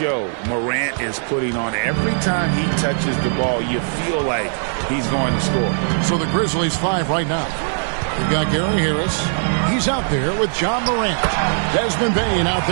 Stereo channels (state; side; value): silent; left; digital silence